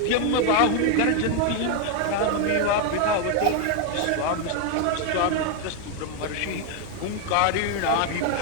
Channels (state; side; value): different; both; correlation 0.01